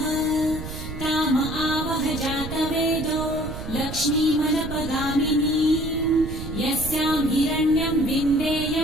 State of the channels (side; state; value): right; noise; rumble, 8 dB below the sound